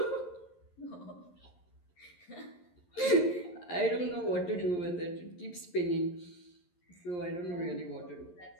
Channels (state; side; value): late; right; 11 ms